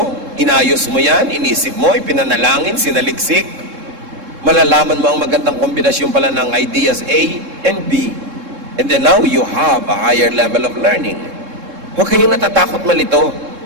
inayos mo yan, inisip mo, ipinanalangin, sinaliksik, malalaman mo ang magandang kombinasyon pala ng ideas A and B. And then now you have a higher level of learning. Huwag kayong natatakot malito.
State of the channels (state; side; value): late; left; 3.7 ms